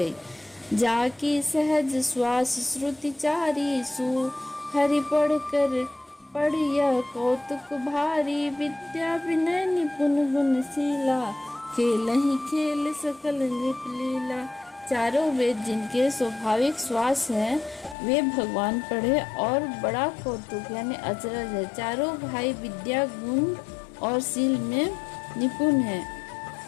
जाकी सहज श्वास श्रुति चारी, सु हरि पढ़िया कौतुक भारी, विद्या विनय निपुण गुणशीला, खेल ही खेल सकल नृप लीला। चारों वेद जिनके स्वाभाविक श्वास हैं, वे भगवान पढ़े और बड़ा कौतुक यानी अचरज है। चारों भाई विद्या, गुण और शील में निपुण हैं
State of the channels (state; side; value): drops out; right; at 17.9 s